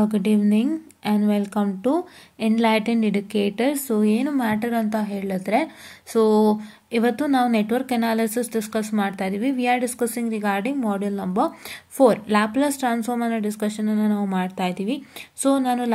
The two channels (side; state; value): both; identical; correlation 1.00